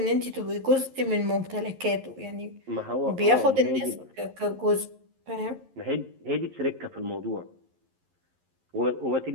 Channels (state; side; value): late; left; 11 ms